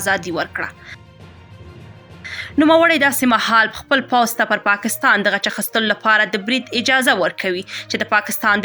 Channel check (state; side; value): identical; both; correlation 1.00